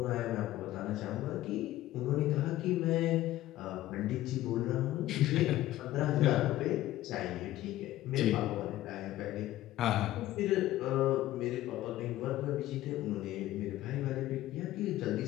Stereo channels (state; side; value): quieter; right; 14.9 dB